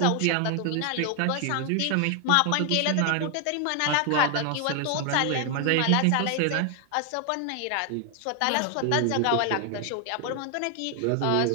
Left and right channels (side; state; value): both; different; correlation 0.00